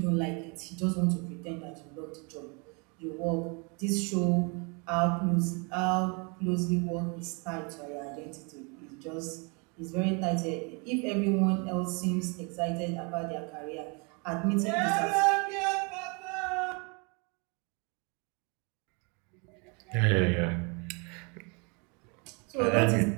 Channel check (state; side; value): quieter; left; 32.6 dB